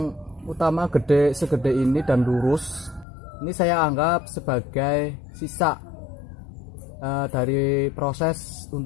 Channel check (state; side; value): drops out; right; at 3.1 s